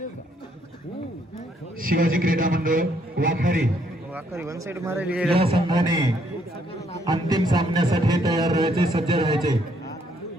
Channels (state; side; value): normal; both; correlation 0.69